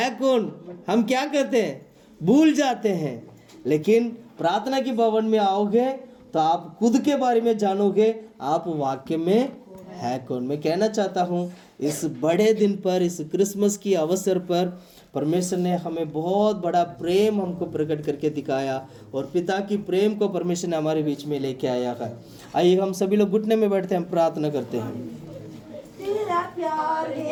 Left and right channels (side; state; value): both; identical; correlation 1.00